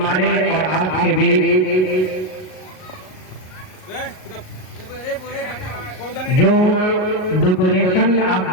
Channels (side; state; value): right; late; 38 ms